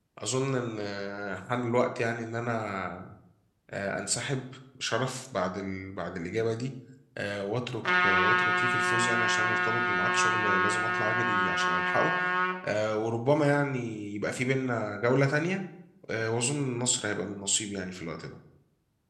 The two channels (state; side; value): identical; both; correlation 1.00